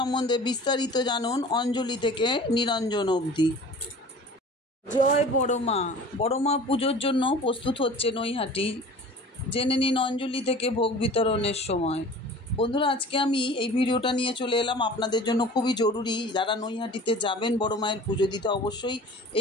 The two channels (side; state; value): both; normal; correlation 0.43